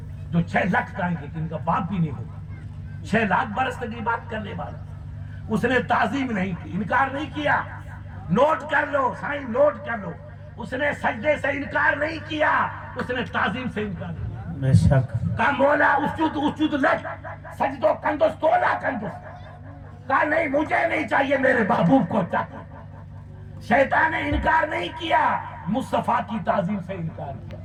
جو 6 لاکھ آئیں گے کہ ان کا باپ بھی نہیں ہوگا. 6 لاکھ برس تک یہ بات کرنے والا. اس نے تعظیم نہیں کی، انکار نہیں کیا. نوٹ کر لو سائیں، نوٹ کر لو. اس نے سجدے سے انکار نہیں کیا، اس نے تعظیم سے انکار کیا. بے شک. کہا مولا اسجد لک سجدو کندس تولا کندس. کہا نہیں مجھے نہیں چاہیے، میرے محبوب کو چاہیے. شیطان نے انکار نہیں کیا، مصطفیٰ کی تعظیم سے انکار کیا،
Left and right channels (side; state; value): both; identical; correlation 1.00